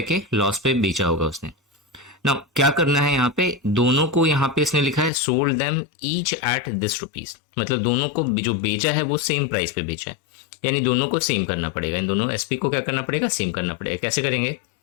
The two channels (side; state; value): right; drops out; at 5.1 s